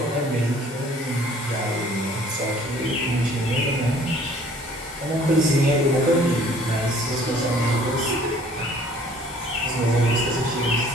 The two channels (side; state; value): both; normal; correlation 0.55